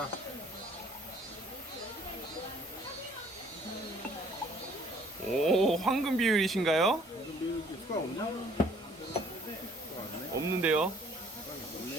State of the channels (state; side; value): normal; both; correlation 0.58